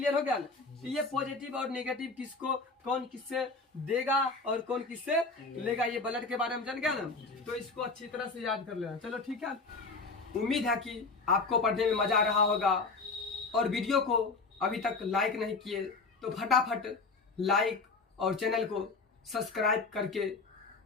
हो गया ना, तो ये पॉजिटिव और नेगेटिव किसको कौन किससे देगा और कौन किससे लेगा, ये ब्लड के बारे में जान गया ना, तो इसको अच्छी तरह से याद कर लेना। चलो ठीक है, उम्मीद है कि आपको पढ़ने में मजा आ रहा होगा, और वीडियो को अभी तक लाइक नहीं किए तो फटाफट लाइक और चैनल को सब्सक्राइब करके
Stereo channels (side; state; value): right; quieter; 3.9 dB